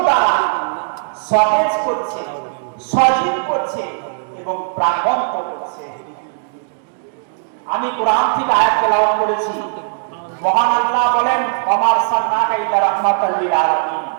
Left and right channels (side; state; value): left; silent; digital silence